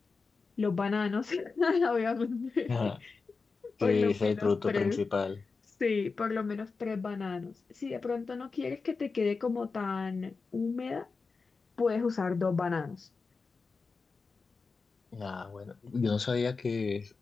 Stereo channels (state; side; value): quieter; right; 4.5 dB